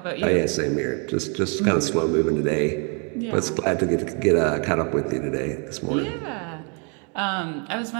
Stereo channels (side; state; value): left; quieter; 37.1 dB